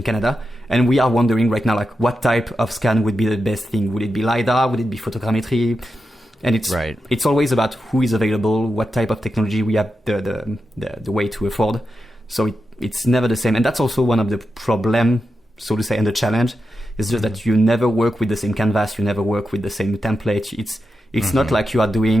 Canada, and we are wondering right now like what type of scan would be the best thing. Would it be LiDAR? Would it be photogrammetry? And it's always about who is available, what type of technology we have the way to afford. So it's never the same, and that's also one of the problem, so to say, and the challenge is just that you never work with the same canvas, you never work with the same template. It's not like you are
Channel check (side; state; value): both; normal; correlation 0.89